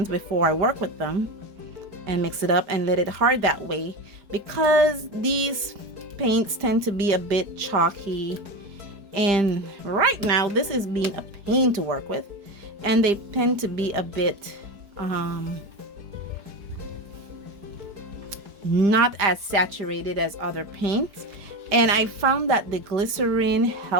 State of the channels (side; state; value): left; late; 5.0 ms